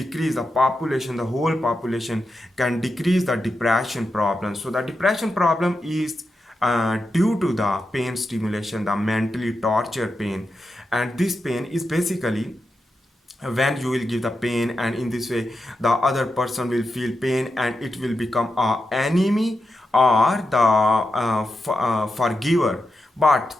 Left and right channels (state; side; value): normal; both; correlation 0.88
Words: the population, the whole population can decrease the depression problem. So the depression problem is due to the pain stimulation, the mentally torture pain. And this pain is basically when you will give the pain, and in this way the other person will feel pain, and it will become a enemy or the forgiver. But